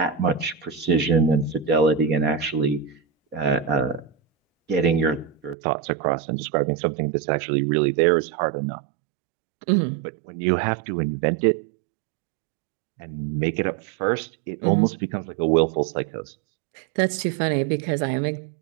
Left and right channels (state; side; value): drops out; left; at 5.6 s